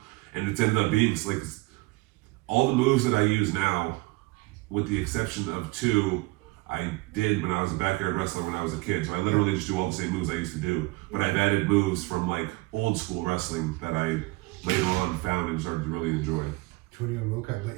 And it's ended up being like all the moves that I use now, with the exception of 2. I did when I was a backyard wrestler when I was a kid. So I literally just do all the same moves I used to do. But I've added moves from like old school wrestling that I later on found and started to really enjoy. Antonio Rocca,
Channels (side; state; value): left; quieter; 23.5 dB